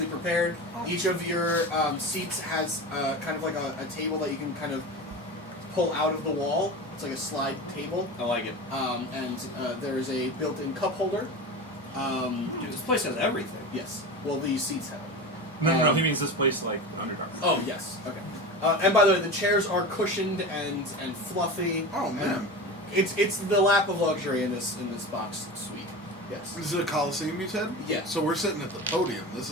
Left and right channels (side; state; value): both; normal; correlation 0.28